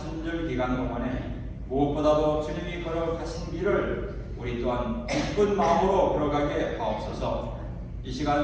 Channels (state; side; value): identical; both; correlation 1.00